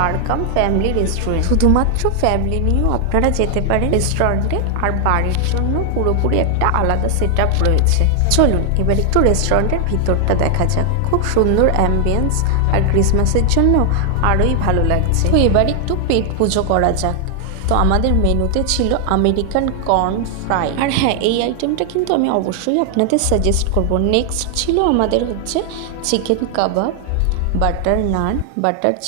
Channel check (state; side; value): different; both; correlation 0.00